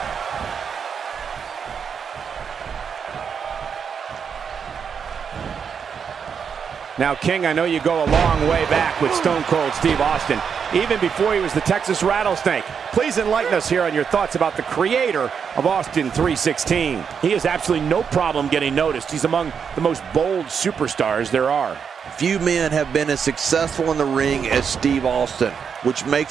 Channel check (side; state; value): left; quieter; 6.8 dB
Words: Now, King, I know you go a long way back with Stone Cold Steve Austin, even before he was the Texas Rattlesnake. Please enlighten us here on your thoughts about the creator of Austin 316. He has absolutely no problem getting noticed. He's among the most bold superstars there are. Few men have been as successful in the ring as Steve Austin, which